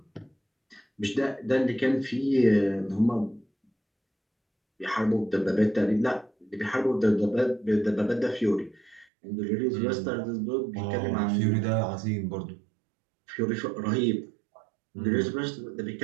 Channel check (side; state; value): left; drops out; at 9.1 s